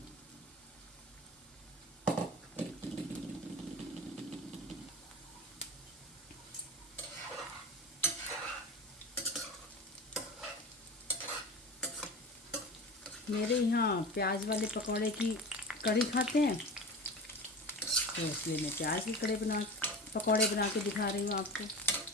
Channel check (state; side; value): normal; both; correlation 0.32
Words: मेरे यहाँ प्याज वाले पकौड़े की कढ़ी खाते हैं, तो इसलिए मैं प्याज की पकौड़े बना के दिखा रही हूँ आपको।